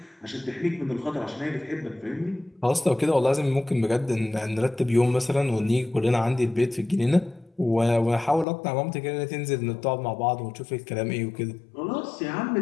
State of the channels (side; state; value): right; drops out; at 8.5 s